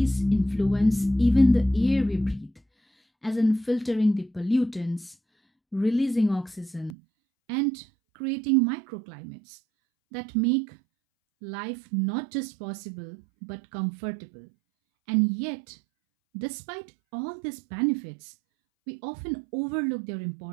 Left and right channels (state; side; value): drops out; left; at 7.0 s